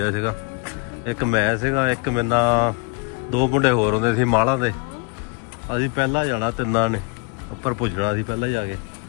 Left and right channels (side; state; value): right; quieter; 31.7 dB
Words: ਸੀਗਾ ਇੱਕ ਮੈਂ ਸੀਗਾ ਇੱਕ ਮੇਰੇ ਨਾਲ 2 ਮੁੰਡੇ ਹੋਰ ਹੁੰਦੇ ਸੀ ਮਾਲਾਂ ਦੇ ਅਸੀਂ ਪਹਿਲਾਂ ਜਾਣਾ ਤਿੰਨਾਂ ਨੇ ਉੱਪਰ ਪੁੱਜਣਾ ਸੀ ਪਹਿਲਾਂ ਜਾ ਕੇ